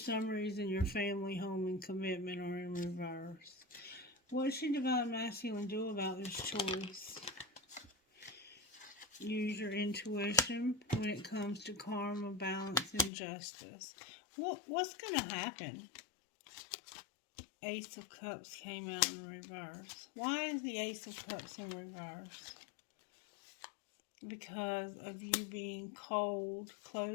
reason your family, home, and commitment are in reverse. What should Divine Masculine do about this choice? Use your intuition when it comes to karma, balance, and justice. What's going to happen? Ace of Cups came out in reverse. Why is the Ace of Cups in reverse? Because of you being cold,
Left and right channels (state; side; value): drops out; right; at 13.1 s